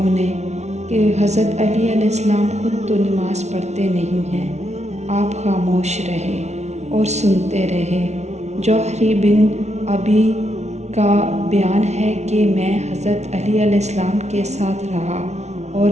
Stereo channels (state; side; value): late; left; 0.32 ms